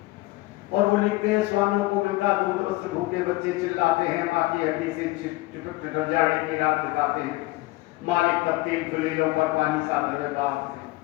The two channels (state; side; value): quieter; right; 20.8 dB